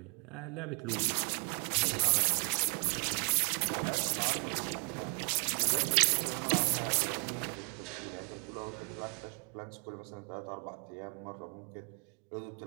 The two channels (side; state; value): left; quieter; 38.2 dB